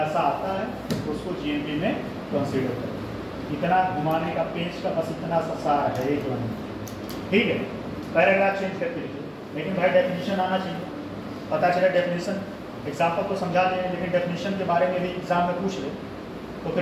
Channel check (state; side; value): identical; both; correlation 1.00